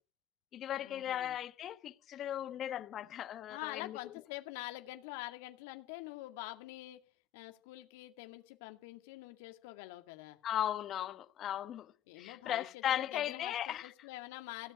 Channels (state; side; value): quieter; right; 11.6 dB